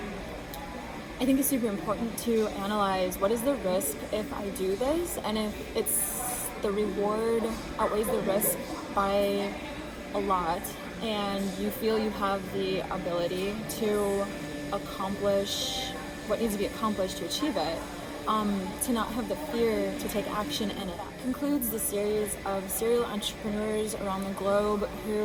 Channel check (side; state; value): both; identical; correlation 1.00